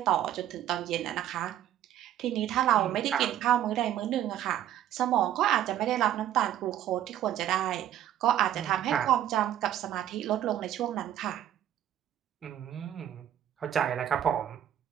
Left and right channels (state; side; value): quieter; left; 11.4 dB